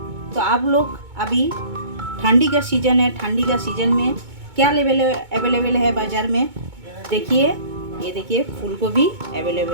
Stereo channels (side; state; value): left; late; 2.2 ms